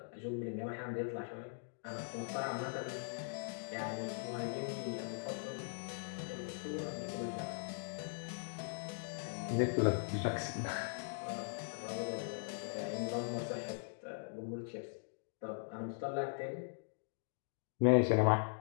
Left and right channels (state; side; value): silent; right; digital silence